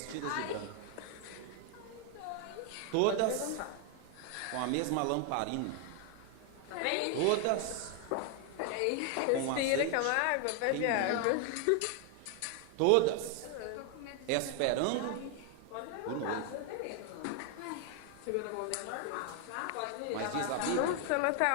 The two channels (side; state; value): both; different; correlation 0.01